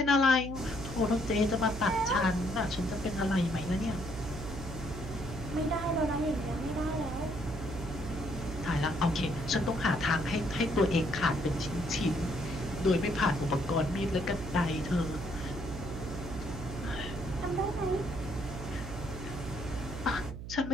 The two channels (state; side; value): noise; right; hum, 9 dB below the sound